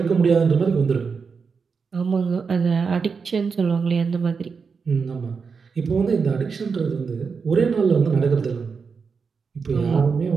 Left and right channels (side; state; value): left; quieter; 5.4 dB